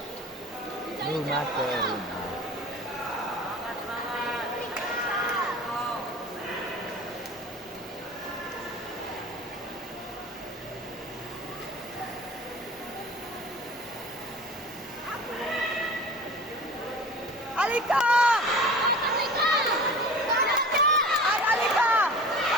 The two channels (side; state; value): both; normal; correlation 0.39